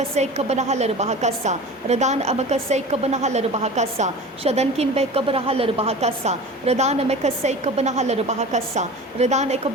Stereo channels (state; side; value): normal; both; correlation 0.36